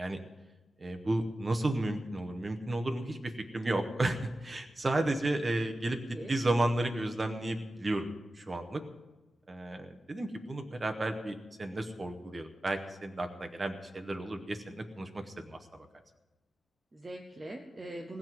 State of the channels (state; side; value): normal; both; correlation 0.94